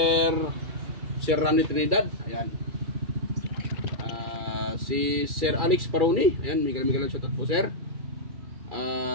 Randy Trinidad. Ayan. Si Sir Alex Paroni. Ayan, mega lang shoutout po Sir.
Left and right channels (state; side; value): late; left; 2.3 ms